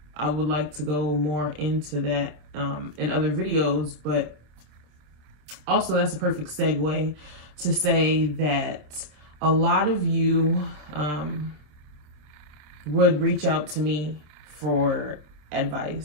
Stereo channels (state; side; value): late; left; 27 ms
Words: I would like to go more into that in other videos, but also that's a perfect segue to say that a lot of you would reach out to me for